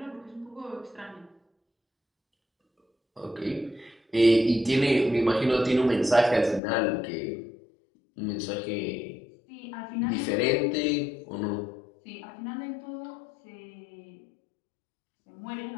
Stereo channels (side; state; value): right; drops out; at 6.6 s